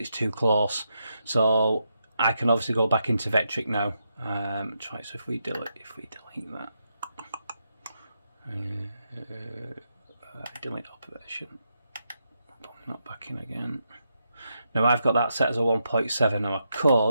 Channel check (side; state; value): both; inverted; correlation -0.83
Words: too close. So I can obviously go back into Vectric now. Try. So if we delete that, delete operation. Not back in again. Now I've got that set as a 1.7. Now I